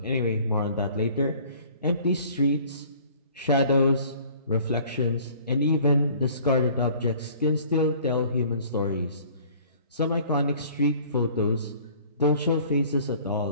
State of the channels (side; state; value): both; inverted; correlation -0.52